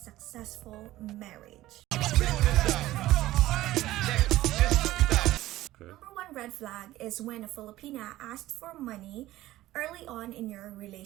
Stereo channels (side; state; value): left; quieter; 15.8 dB